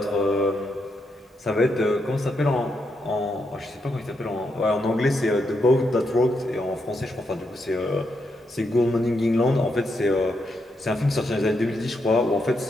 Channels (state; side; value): normal; both; correlation 0.81